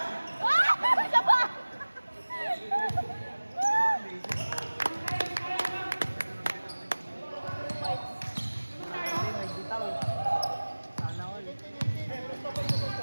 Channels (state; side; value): inverted; both; correlation -1.00